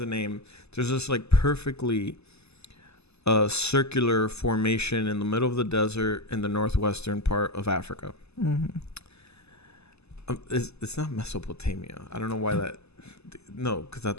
a name. There's this like perfectly circular formation in the middle of the desert in the northwestern part of Africa. Mm-hmm. It's not Mesopotamia. I don't know why that. No, because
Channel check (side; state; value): right; late; 0.79 ms